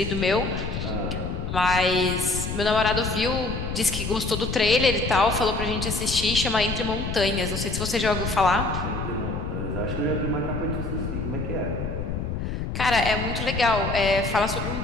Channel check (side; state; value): left; noise; rumble, 4 dB below the sound